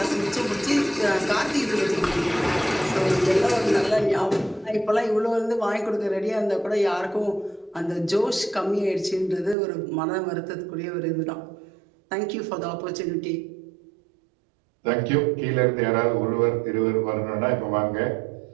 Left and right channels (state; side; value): drops out; left; at 9.6 s